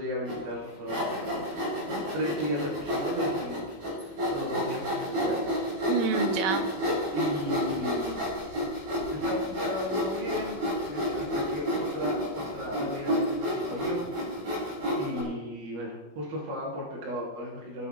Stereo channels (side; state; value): left; late; 21 ms